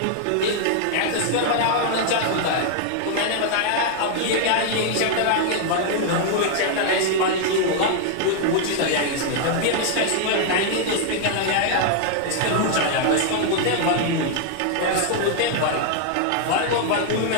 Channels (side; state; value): both; different; correlation 0.00